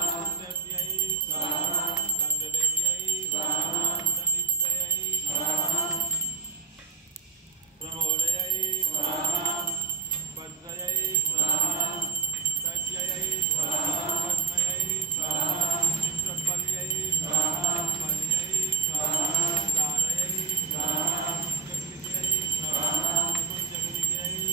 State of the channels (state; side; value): quieter; left; 4.7 dB